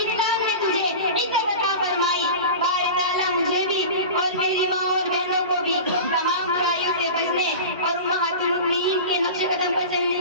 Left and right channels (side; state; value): both; inverted; correlation -0.32